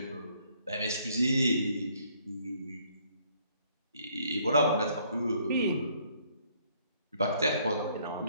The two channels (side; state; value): both; inverted; correlation -0.65